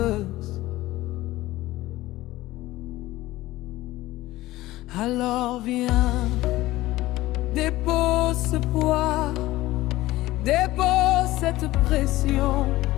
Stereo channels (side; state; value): right; quieter; 17.3 dB